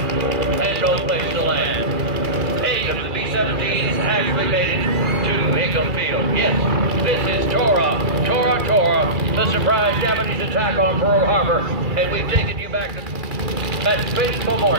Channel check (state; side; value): late; left; 2.3 ms